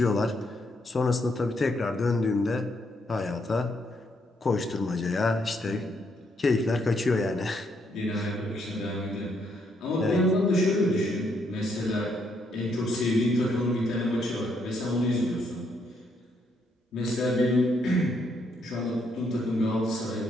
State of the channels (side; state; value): both; normal; correlation 0.74